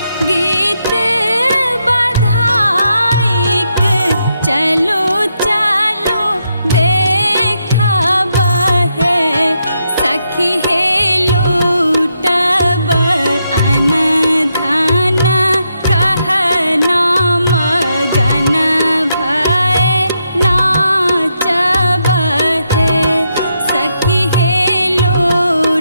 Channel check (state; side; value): inverted; both; correlation -0.81